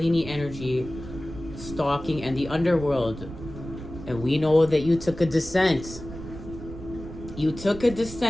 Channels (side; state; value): right; noise; rumble, 12 dB below the sound